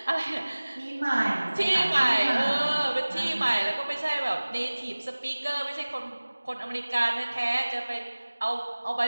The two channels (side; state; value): both; inverted; correlation -1.00